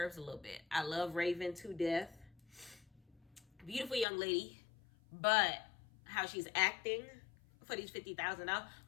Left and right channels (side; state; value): right; drops out; at 4.0 s